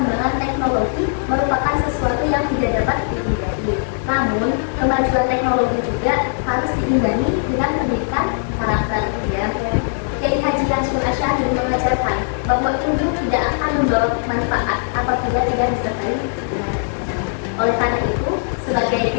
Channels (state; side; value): silent; right; digital silence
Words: teknologi merupakan sesuatu yang tidak dapat dihindari. Namun, kemajuan teknologi juga harus diimbangi dengan pendidikan karakter. Ya. Kiai Haji Hasyim Asy'ari mengajarkan bahwa ilmu tidak akan membawa manfaat apabila tidak disertai dengan. Oleh karena itu, sebagai